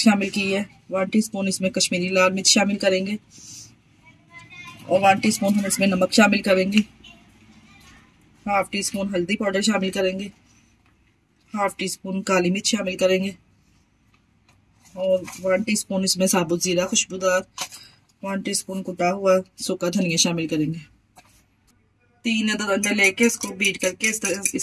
शामिल की है। 1 टीस्पून इसमें कश्मीरी लाल मिर्च शामिल करेंगे और 1 टीस्पून हम इसमें नमक शामिल करेंगे। 1/2 टीस्पून हल्दी पाउडर शामिल करेंगे। 1/2 टीस्पून काली मिर्च शामिल करेंगे और 1 टीस्पून इसमें साबुत जीरा खुशबूदार, 1 टीस्पून कुटा हुआ सूखा धनिया शामिल करेंगे। 3 अदद अंडे लेके इसको बीट करके इस तरह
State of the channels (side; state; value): both; identical; correlation 1.00